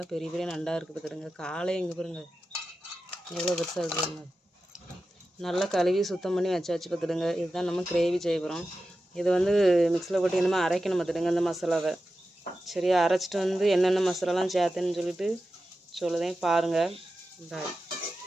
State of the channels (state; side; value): normal; both; correlation 0.92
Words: பெரிய பெரிய நண்டாக இருக்குது பார்த்துடுங்க. காலை இங்கே பாருங்க எவ்வளோ பெருசாக இருக்குதுங்க. நல்லா கழுவி சுத்தம் பண்ணி வச்சாச்சு பார்த்துடுங்க. இதுதான் நம்ம கிரேவி செய்ய போகிறோம். இது வந்து மிக்ஸில் போட்டு என்னமோ அரைக்கணும் பார்த்துடுங்க இந்த மசாலாவை. சரியா அரைச்சிட்டு வந்து என்னென்ன மசாலாலாம் சேர்த்துன்னு சொல்லிட்டு சொல்லுதேன் பாருங்கள்.